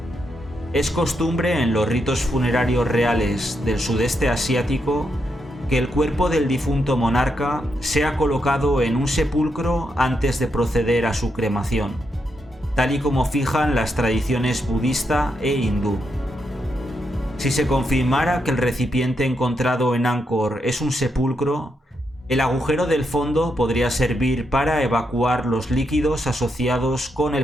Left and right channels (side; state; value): both; normal; correlation 0.82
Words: Es costumbre en los ritos funerarios reales del sudeste asiático que el cuerpo del difunto monarca sea colocado en un sepulcro antes de proceder a su cremación, tal y como fijan las tradiciones budista e hindú. Si se confirmara que el recipiente encontrado en Angkor es un sepulcro, el agujero del fondo podría servir para evacuar los líquidos asociados con